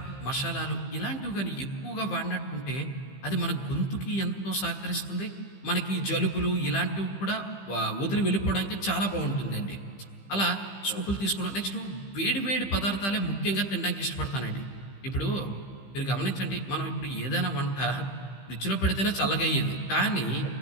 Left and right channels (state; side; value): late; right; 15 ms